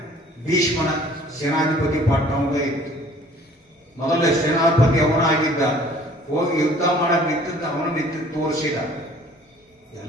ಭೀಷ್ಮನ ಸೇನಾಧಿಪತಿ ಪಟ್ಟ ಅವನೇ ಇತ್ತು. ಮೊದಲೇ ಸೇನಾಧಿಪತಿ ಅವನಾಗಿದ್ದ. ಹೋಗಿ ಯುದ್ಧ ಮಾಡಕ್ ನಿಂತಿದ್ದು ತೋರಿಸಿದ.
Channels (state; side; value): normal; both; correlation 0.53